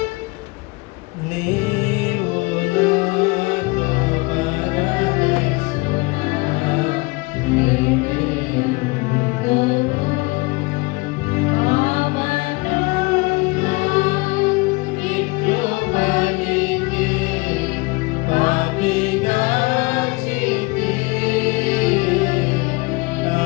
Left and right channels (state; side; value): quieter; right; 25.7 dB